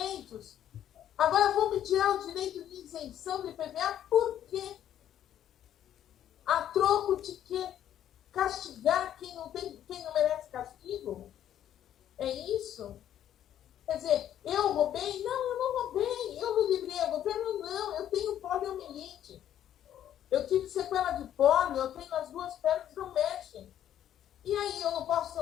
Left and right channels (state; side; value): quieter; right; 10.9 dB